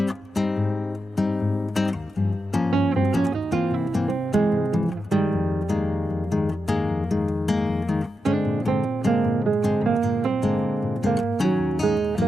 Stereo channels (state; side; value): normal; both; correlation 0.88